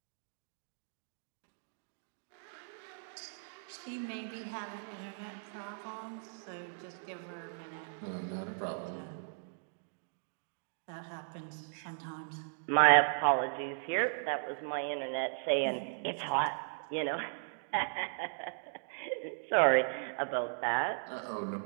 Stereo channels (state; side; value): silent; left; digital silence